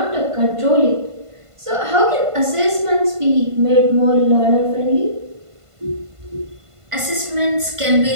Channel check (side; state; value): left; late; 1.5 ms